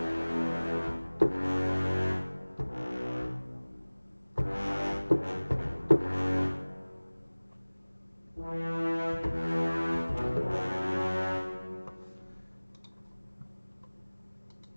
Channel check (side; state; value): both; inverted; correlation -1.00